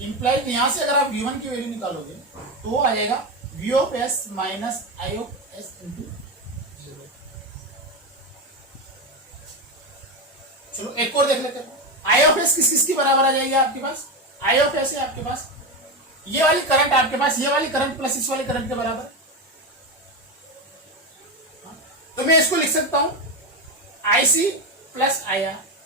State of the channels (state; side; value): normal; both; correlation 0.15